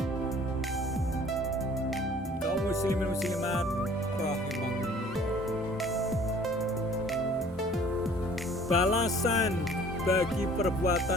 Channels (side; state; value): both; normal; correlation 0.52